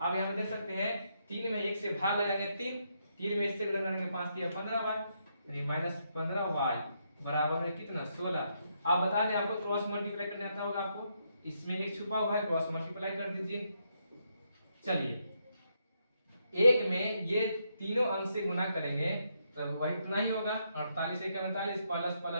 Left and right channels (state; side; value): inverted; both; correlation -0.78